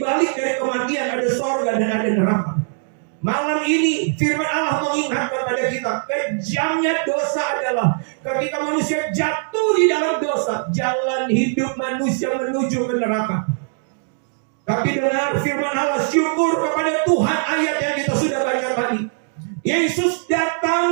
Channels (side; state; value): left; silent; digital silence